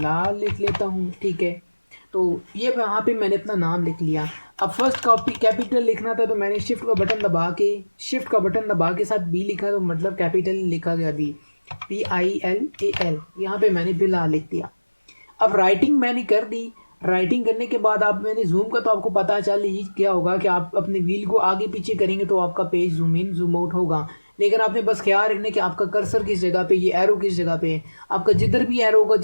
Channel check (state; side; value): inverted; both; correlation -1.00